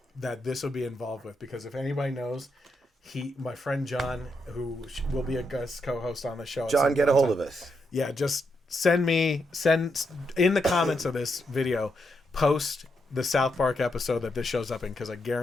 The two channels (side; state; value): both; normal; correlation 0.81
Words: this will be involved with, because if anybody knows, my friend John, who will be a guest co-host on the show. John, get a hold of us. Yeah, just send in the comments of this video, post the South Park episode that this shows up in, because I